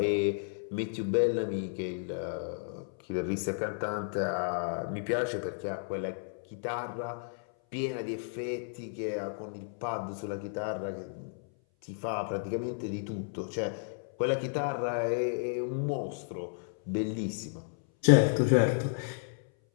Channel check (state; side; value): silent; right; 56 dB below the other